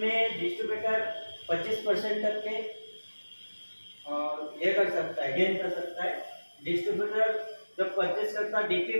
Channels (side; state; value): both; inverted; correlation -1.00